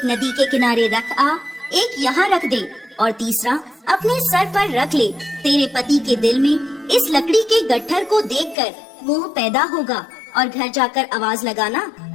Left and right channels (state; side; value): drops out; right; at 8.6 s